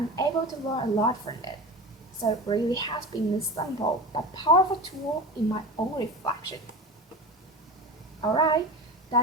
able to learn a lot from it. So it really has been a simple but powerful tool in my own reflection. Alright,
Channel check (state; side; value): normal; both; correlation 0.30